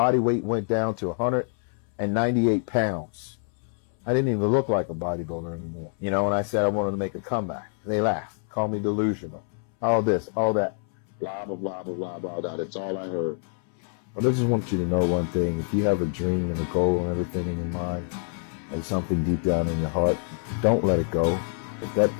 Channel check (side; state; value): right; silent; 60 dB below the other